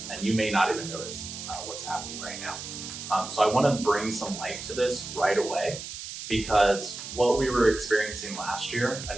and you may not even notice what's happening right now. So I want to bring some light to this right away, because what we were experiencing last year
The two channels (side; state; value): right; noise; hiss, 9 dB below the sound